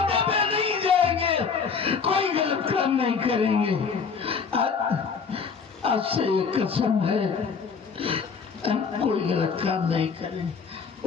पे नहीं जाएंगे, कोई गलत काम नहीं करेंगे। आज से ये कसम है, हम कोई गलत काम नहीं करेंगे।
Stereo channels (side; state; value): right; quieter; 5.7 dB